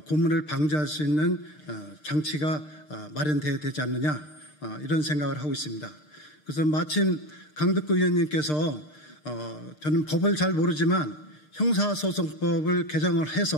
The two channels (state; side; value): late; right; 6.6 ms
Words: 고문을 방지할 수 있는 장치가 마련돼야 되지 않느냐 이런 생각을 하고 있습니다. 그래서 마침 강덕구 의원님께서 저는 법을 잘 모르지만 형사소송법을 개정을